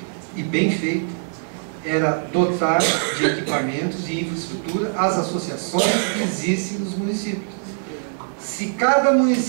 era dotar de equipamentos e infraestrutura as associações que existem nos municípios. Se cada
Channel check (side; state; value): left; silent; 64 dB below the other